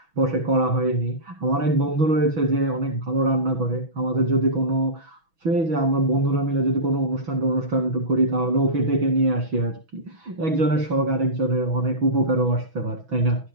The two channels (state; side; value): late; left; 6.1 ms